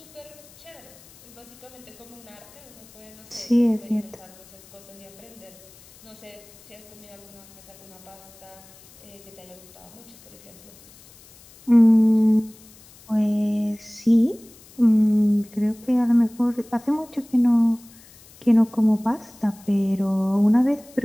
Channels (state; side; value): noise; left; hiss, 24 dB below the sound